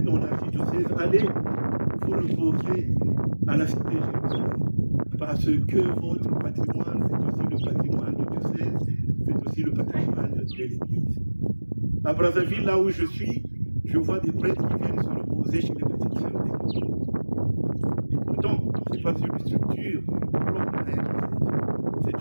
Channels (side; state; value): both; inverted; correlation -1.00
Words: dans l'archidiocèse, allez vous reposer à la cité Jérusalem. Parce que votre patrimoine, c'est aussi le patrimoine du diocèse, c'est aussi le patrimoine de l'Église. À Brazzaville, là où je suis, je vois des prêtres qui viennent se reposer chez les petites sœurs d'église. Et pourtant, ce n'est pas une structure propre à elle, c'est